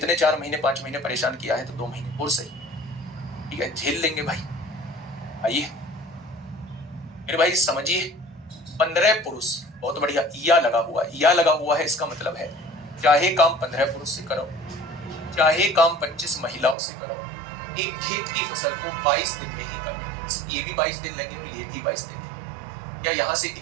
4 महीने 5 महीने परेशान किया है तो 2 महीने और सही, ठीक है, झेल लेंगे भाई। आइए मेरे भाई समझिए, 15 पुरुष, बहुत बढ़िया, या लगा हुआ है। या लगा हुआ है इसका मतलब है चाहे काम 15 पुरुष से कराओ, चाहे काम 25 महिलाओं से कराओ, एक खेत की फसल को 22 दिन में ही करने, ये भी 22 दिन लेंगे और ये भी 22 दिन लेंगे। क्या यहाँ से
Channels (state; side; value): drops out; left; at 16.8 s